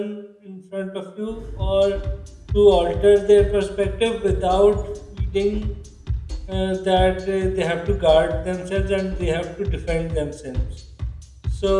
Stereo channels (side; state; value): both; identical; correlation 1.00